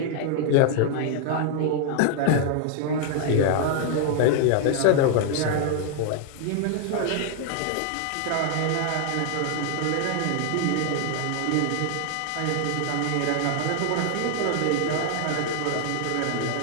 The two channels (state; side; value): different; both; correlation 0.00